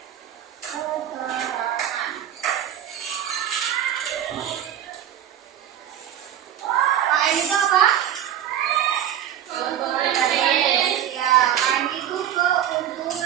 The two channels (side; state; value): left; quieter; 10.4 dB